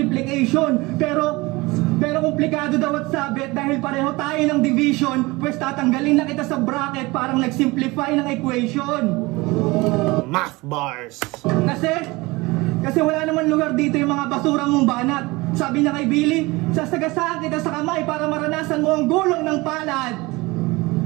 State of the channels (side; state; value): left; quieter; 22.7 dB